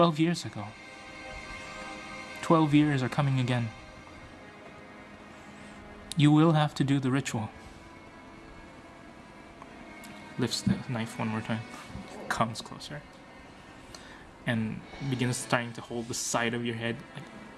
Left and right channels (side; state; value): both; identical; correlation 1.00